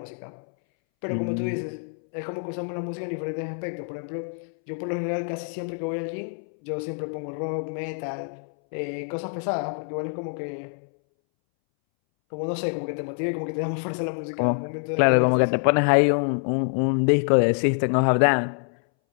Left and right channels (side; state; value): right; silent; 61 dB below the other